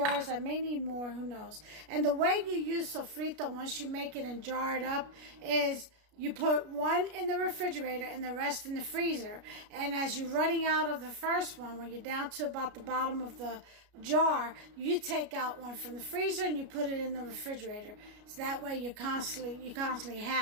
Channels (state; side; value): late; left; 33 ms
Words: I may need more, who knows. And the way you use sofrito once you make it and jar it up is you put 1 in the refrigerator and the rest in the freezer. And as you're running out of the first one, when you're down to about the bottom of the jar, you take out 1 from the freezer and you put it in the refrigerator. So that way you constantly